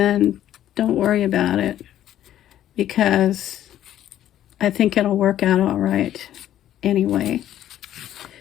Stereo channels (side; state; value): right; quieter; 11.9 dB